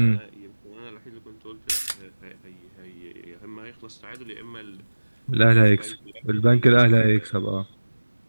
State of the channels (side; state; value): both; inverted; correlation -1.00